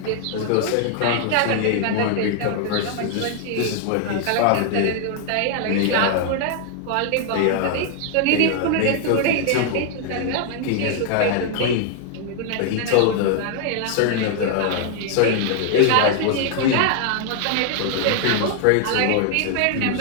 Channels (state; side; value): different; both; correlation 0.00